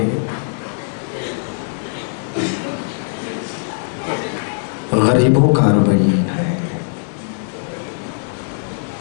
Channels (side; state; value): right; silent; digital silence